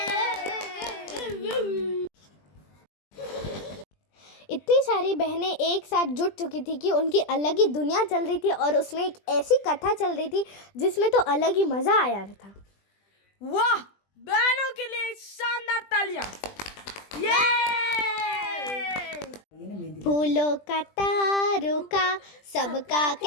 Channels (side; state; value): right; late; 20 ms